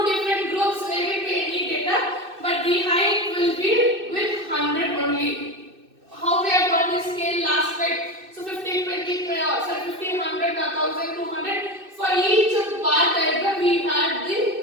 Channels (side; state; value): left; late; 2.6 ms